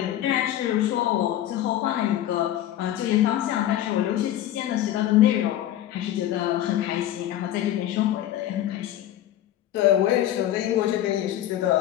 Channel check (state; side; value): quieter; right; 12.5 dB